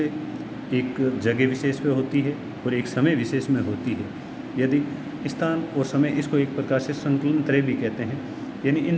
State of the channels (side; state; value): both; identical; correlation 1.00